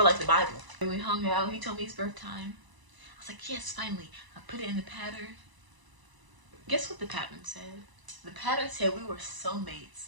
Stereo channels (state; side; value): late; left; 1.0 ms